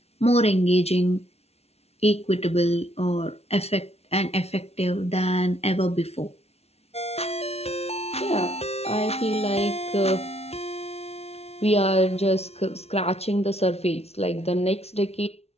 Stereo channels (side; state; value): right; late; 0.30 ms